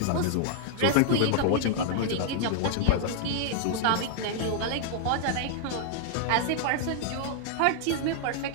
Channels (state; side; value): different; both; correlation -0.01